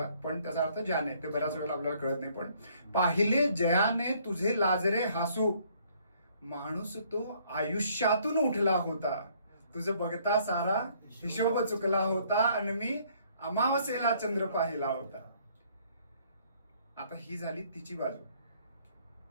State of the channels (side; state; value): both; inverted; correlation -0.63